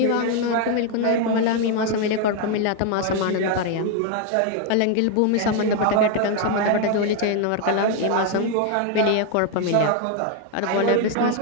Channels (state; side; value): different; both; correlation 0.00